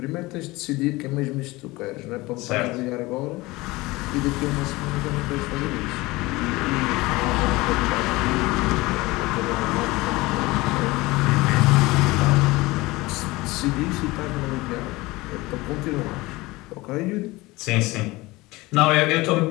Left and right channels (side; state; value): right; quieter; 21.2 dB